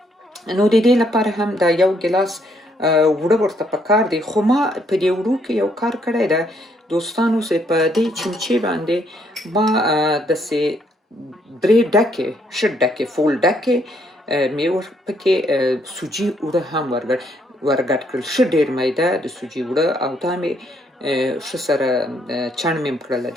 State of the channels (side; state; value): both; normal; correlation 0.70